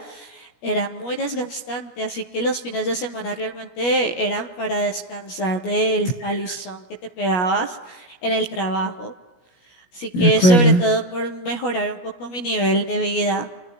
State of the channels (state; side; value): late; right; 17 ms